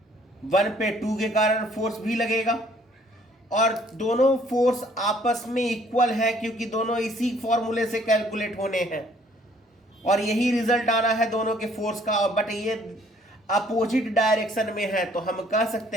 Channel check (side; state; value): both; normal; correlation 0.61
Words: 1 पे 2 के कारण फोर्स भी लगेगा। और दोनों फोर्स आपस में इक्वल है क्योंकि दोनों इसी फॉर्मूले से कैलकुलेट होने हैं और यही रिजल्ट आना है दोनों के फोर्स का। बट ये अपोजिट डायरेक्शन में है, तो हम कह